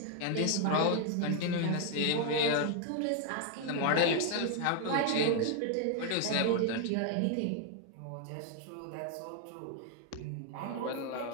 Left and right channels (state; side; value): different; both; correlation 0.00